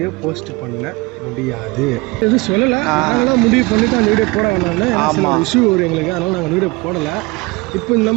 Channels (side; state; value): left; quieter; 24.7 dB